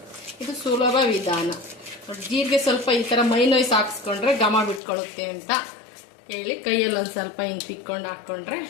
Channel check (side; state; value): right; drops out; at 4.8 s